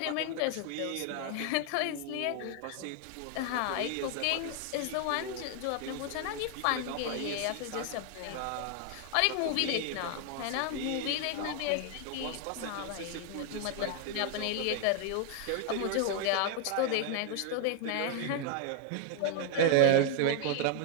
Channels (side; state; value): both; different; correlation 0.00